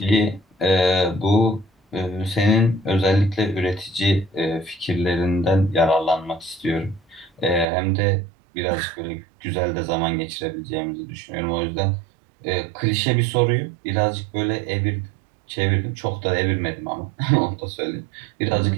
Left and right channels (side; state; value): left; drops out; at 7.7 s